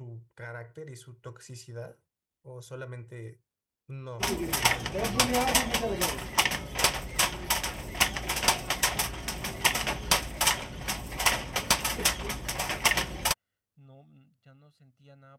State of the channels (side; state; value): both; identical; correlation 1.00